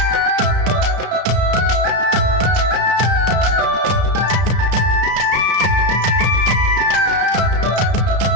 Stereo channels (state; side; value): late; left; 33 ms